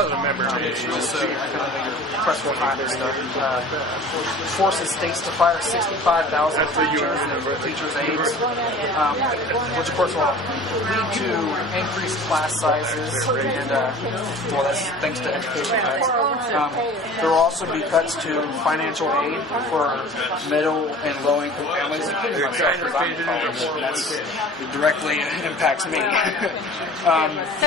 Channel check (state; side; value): normal; both; correlation 0.43